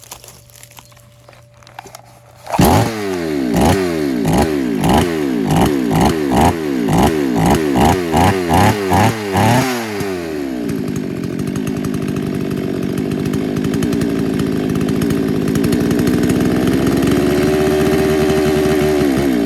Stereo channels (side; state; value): both; identical; correlation 1.00